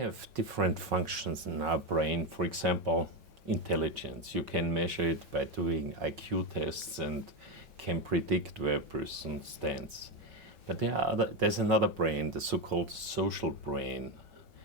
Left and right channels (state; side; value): normal; both; correlation 0.11